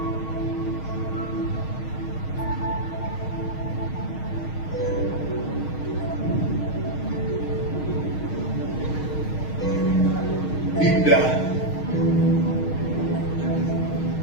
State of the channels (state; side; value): late; right; 6.4 ms